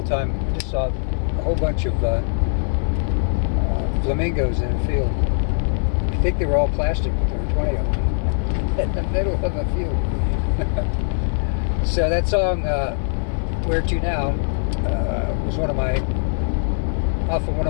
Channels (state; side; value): silent; right; digital silence